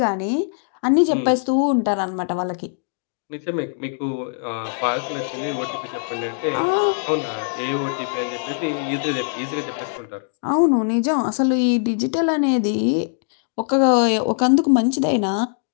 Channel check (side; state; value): right; silent; digital silence